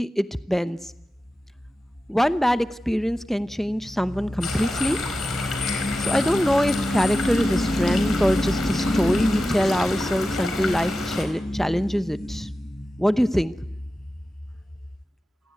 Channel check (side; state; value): both; normal; correlation 0.93